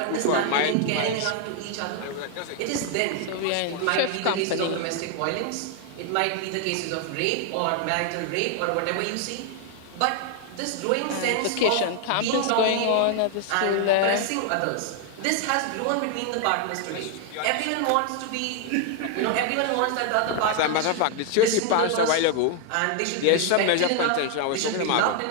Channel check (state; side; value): different; both; correlation 0.00